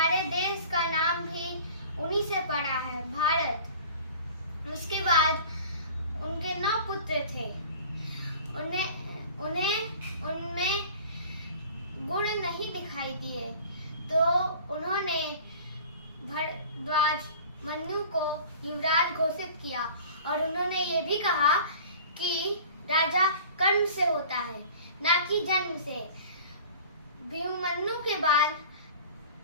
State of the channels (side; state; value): both; inverted; correlation -0.43